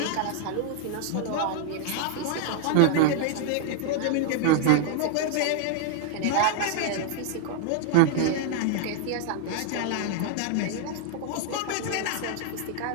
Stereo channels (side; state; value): both; different; correlation 0.00